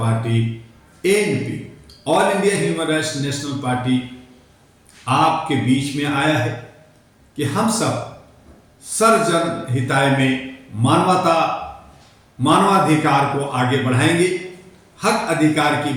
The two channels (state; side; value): identical; both; correlation 1.00